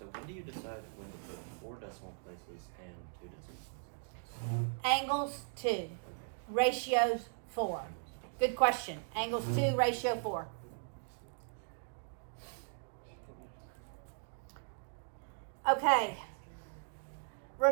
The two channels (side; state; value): left; silent; digital silence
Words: when do you decide when to put 4 decimal places and 2 decimal places? Angles 2, Okay. ratios 4. Good question. Angles 2, ratio 4. Okay.